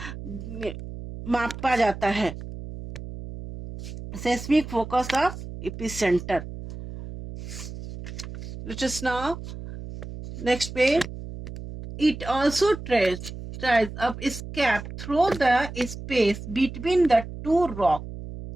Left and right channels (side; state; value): right; noise; hum, 11 dB below the sound